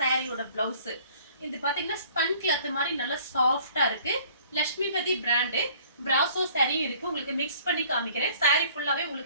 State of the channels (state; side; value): inverted; both; correlation -0.54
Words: சாரியோட பிளவுஸ். இது பாத்தீங்கன்னா ஸ்பன் கிளாத் மாதிரி நல்லா சாஃப்ட்டா இருக்கு. லட்சுமிபதி பிராண்ட் பிராசோ saree இருக்கு. உங்களுக்கு மிக்ஸ் பண்ணி காமிக்கிறேன். saree ஃபுல்லாவே